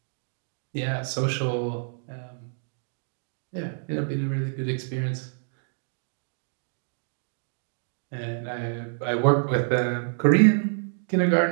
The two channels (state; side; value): silent; left; digital silence